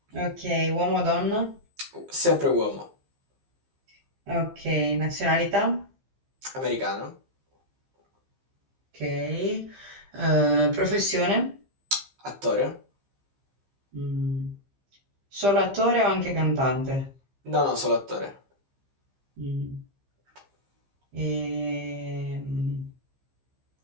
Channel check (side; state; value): left; late; 15 ms